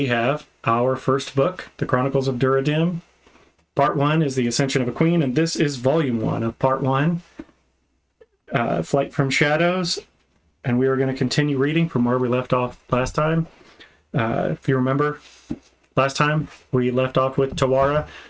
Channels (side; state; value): both; identical; correlation 1.00